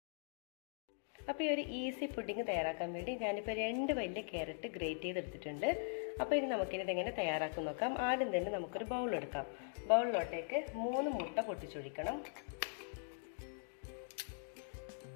അപ്പോൾ ഈ ഒരു ഈസി പുഡിങ് തയ്യാറാക്കാൻ വേണ്ടി ഞാനിപ്പോൾ 2 വലിയ ക്യാരറ്റ് ഗ്രേറ്റ് ചെയ്തെടുത്തിട്ടുണ്ട്. അപ്പോൾ ഇനി നമുക്കിനി ഇതെങ്ങനെ തയ്യാറാക്കും നോക്കാം. ആദ്യം തന്നെ നമുക്കൊരു ബൗൾ എടുക്കാം. ബൗളിലോട്ടേക്ക് 3 മുട്ട പൊട്ടിച്ചൊഴിക്കണം.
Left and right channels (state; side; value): silent; right; digital silence